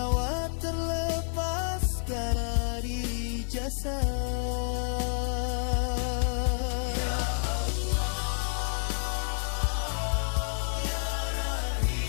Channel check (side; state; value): right; silent; digital silence